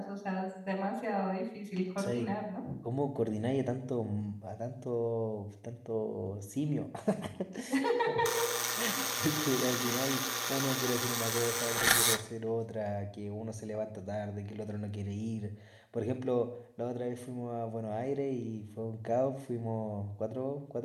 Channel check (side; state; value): both; identical; correlation 1.00